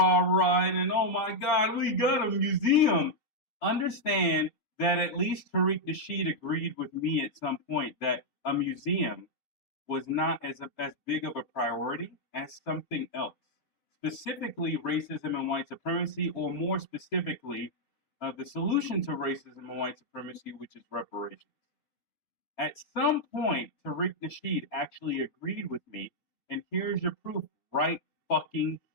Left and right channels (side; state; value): right; late; 7.5 ms